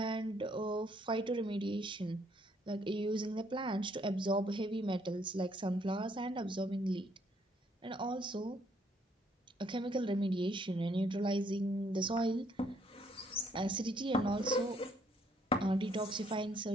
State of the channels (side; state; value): both; normal; correlation 0.68